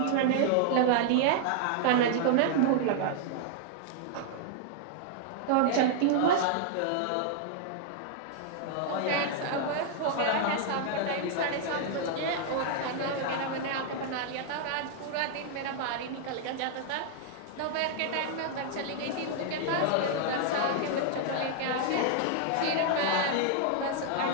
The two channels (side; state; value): both; different; correlation 0.00